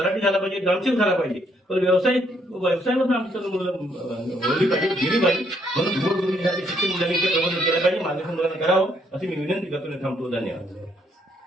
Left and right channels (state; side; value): normal; both; correlation 0.71